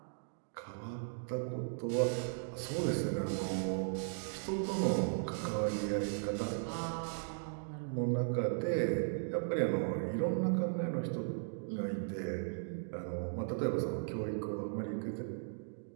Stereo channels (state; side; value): silent; left; digital silence